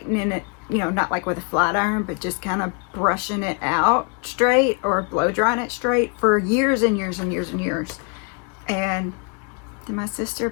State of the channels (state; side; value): quieter; right; 36.4 dB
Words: it, you know, not like with a flat iron, but just kind of brushing it out straight or blow drying it straight for years and years and years and years. And then my sister